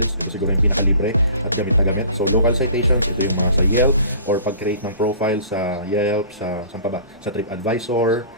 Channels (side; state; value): both; inverted; correlation -0.45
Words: Ito siguro yung pinakalibre at gamit na gamit. So local citations, ito yung mga sa Yelp or pag-create ng profile sa Yelp, saan pa ba? Sa TripAdvisor,